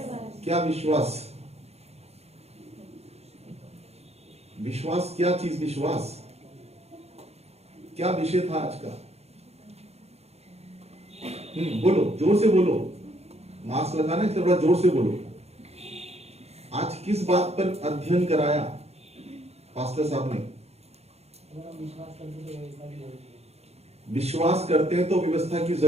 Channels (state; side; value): late; left; 0.31 ms